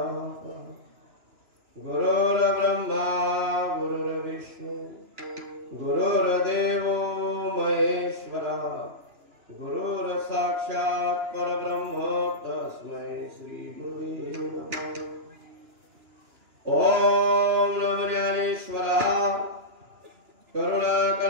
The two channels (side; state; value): left; late; 2.9 ms